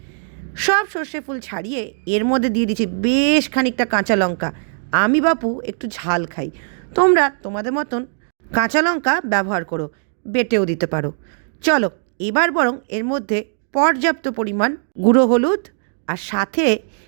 সব সর্ষে ফুল ছাড়িয়ে এর মধ্যে দিয়ে দিচ্ছি বেশ খানিকটা কাঁচা লঙ্কা। আমি বাপু একটু ঝাল খাই, তোমরা তোমাদের মতন কাঁচা লঙ্কা ব্যবহার করো, বেটেও দিতে পারো। চলো এবার বরং এর মধ্যে পর্যাপ্ত পরিমাণ গুঁড়ো হলুদ আর সাথে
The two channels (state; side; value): silent; left; digital silence